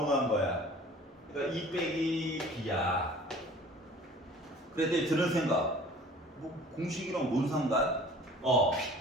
거야. 그러니까 2 빼기 B야. 그랬더니 드는 생각. 뭐 공식이랑 뭔 상관?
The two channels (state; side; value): normal; both; correlation 0.48